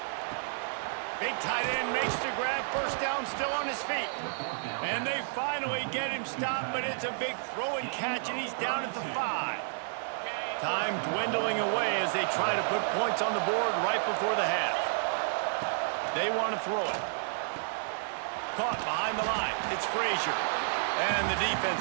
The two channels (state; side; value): silent; left; digital silence